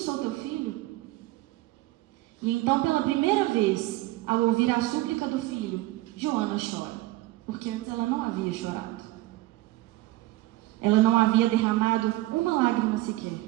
teu filho. E então, pela primeira vez, ao ouvir a súplica do filho, Joana chora, porque antes ela não havia chorado. Ela não havia derramado uma lágrima sequer.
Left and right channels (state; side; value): quieter; left; 18.2 dB